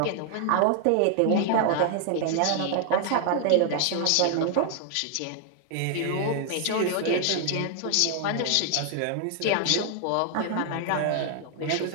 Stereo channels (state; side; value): different; both; correlation 0.00